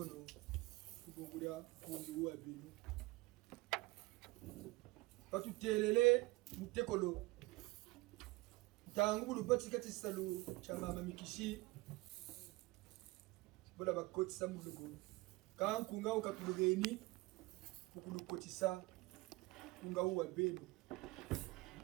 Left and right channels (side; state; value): left; quieter; 22.0 dB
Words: Kugungulia kungi uwa binu. Watu telele, mutekolo. Tangu bulu bati kati salu cha Mama Mikisi. Bola bakotisa mulugo. Quand kunga ukatulugeni, mukulukotisa kunga uwa binu.